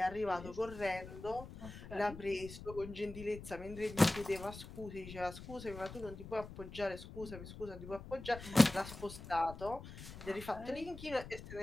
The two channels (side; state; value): left; noise; rumble, 13 dB below the sound